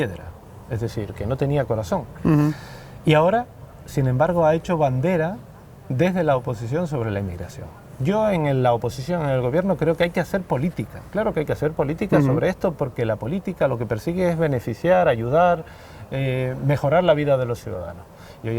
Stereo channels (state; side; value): identical; both; correlation 1.00